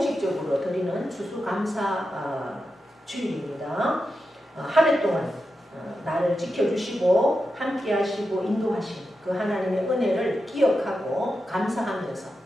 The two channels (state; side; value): normal; both; correlation 0.89